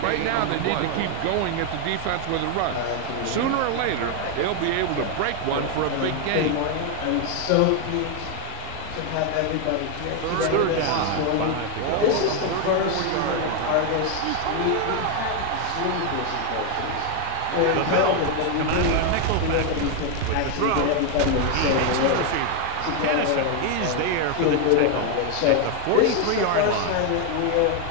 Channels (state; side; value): different; both; correlation 0.01